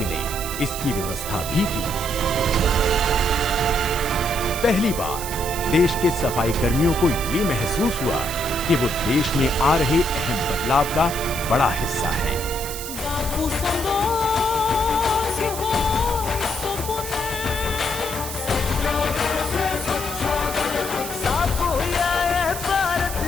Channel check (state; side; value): noise; right; hiss, 8 dB below the sound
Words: इसकी व्यवस्था भी की। पहली बार देश के सफाई कर्मियों को ये महसूस हुआ कि वो देश में आ रहे अहम बदलाव का बड़ा हिस्सा है।